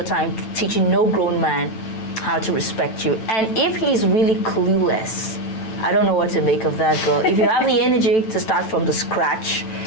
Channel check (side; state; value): right; late; 9.1 ms